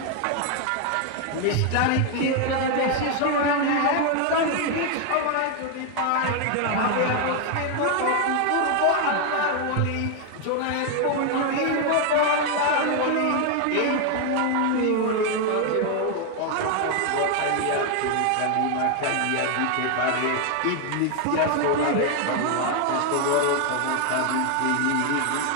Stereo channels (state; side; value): different; both; correlation 0.01